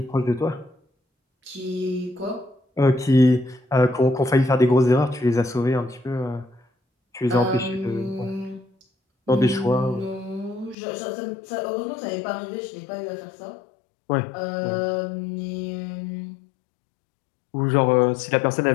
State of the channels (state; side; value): drops out; right; at 10.8 s